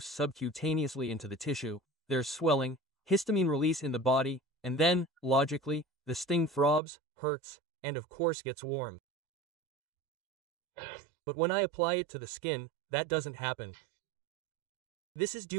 subcutaneously into the tissue, there's swelling, histamine release in the body, and then, logically, the sting throbs, hurts, and of course gets warm. But when I apply it to the skin, that doesn't happen. This is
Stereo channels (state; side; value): drops out; left; at 6.8 s